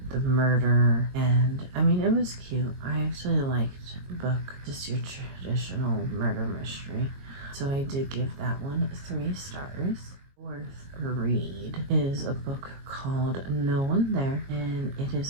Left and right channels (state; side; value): late; left; 22 ms